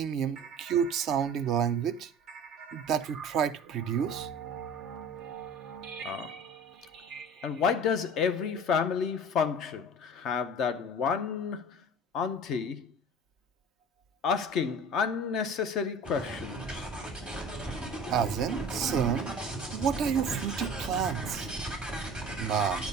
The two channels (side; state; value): both; normal; correlation 0.39